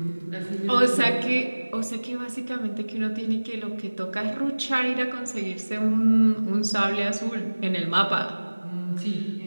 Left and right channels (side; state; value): both; inverted; correlation -1.00